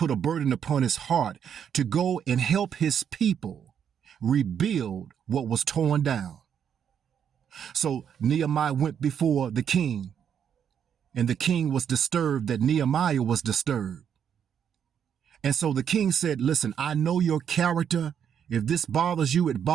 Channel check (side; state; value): left; quieter; 8.3 dB